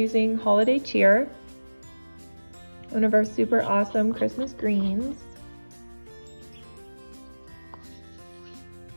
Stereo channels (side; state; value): both; inverted; correlation -1.00